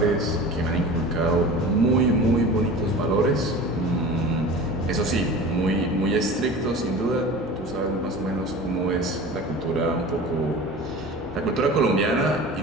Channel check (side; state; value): both; normal; correlation 0.37